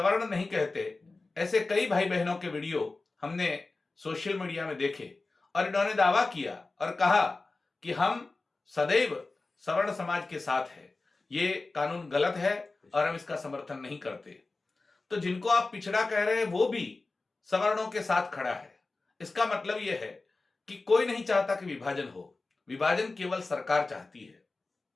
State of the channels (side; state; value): right; quieter; 3.5 dB